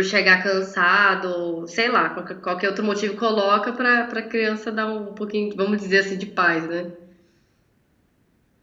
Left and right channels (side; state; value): both; identical; correlation 1.00